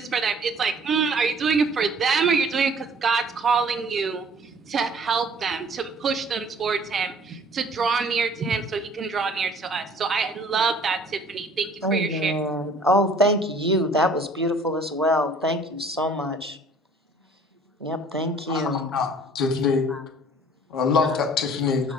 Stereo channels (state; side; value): normal; both; correlation 0.53